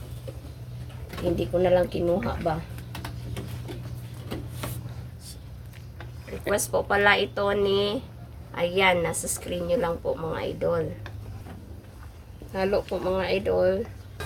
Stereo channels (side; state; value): both; identical; correlation 1.00